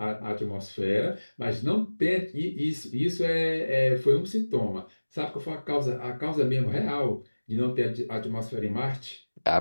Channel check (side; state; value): both; inverted; correlation -1.00